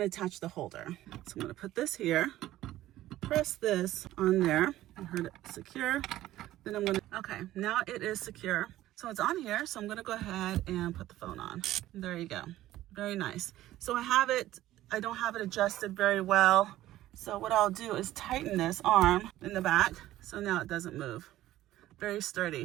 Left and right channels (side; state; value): left; quieter; 14.7 dB